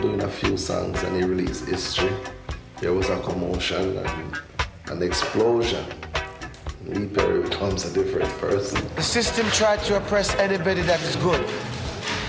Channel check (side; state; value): both; identical; correlation 1.00